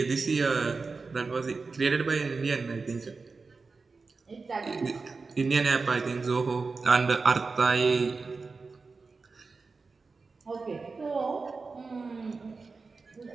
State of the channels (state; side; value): quieter; left; 4.2 dB